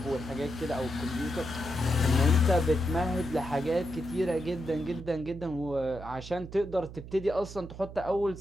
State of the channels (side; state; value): right; noise; hum, 13 dB below the sound